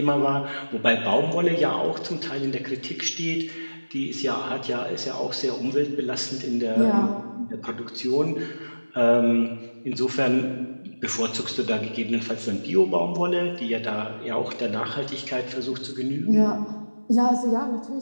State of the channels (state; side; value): inverted; both; correlation -1.00